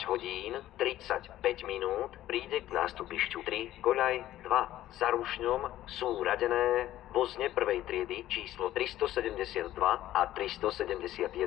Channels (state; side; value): quieter; right; 13.8 dB